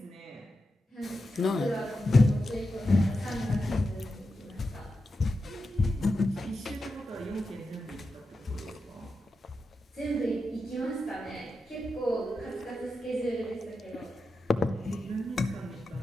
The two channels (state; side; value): normal; both; correlation 0.89